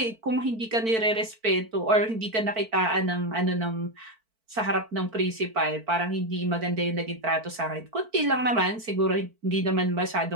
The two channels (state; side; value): late; left; 4.5 ms